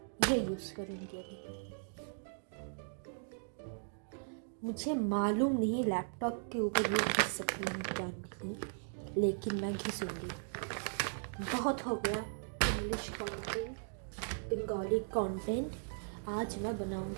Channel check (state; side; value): silent; left; digital silence